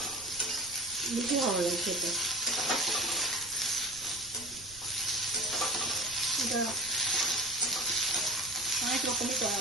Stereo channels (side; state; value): right; noise; rumble, 20 dB below the sound